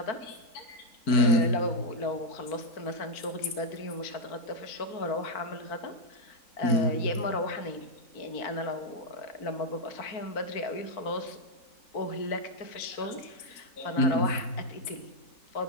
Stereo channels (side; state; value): right; late; 4.4 ms